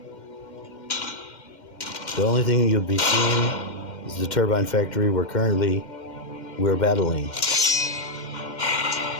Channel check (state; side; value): late; right; 2.1 ms